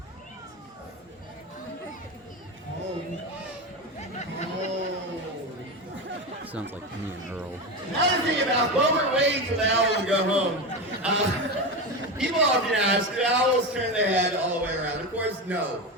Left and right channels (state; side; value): normal; both; correlation 0.19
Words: Home. Sounds like me and Earl. Another thing about what we're waiting for the owl to go home. People often ask, do owls turn their head all the way around? Of course, no.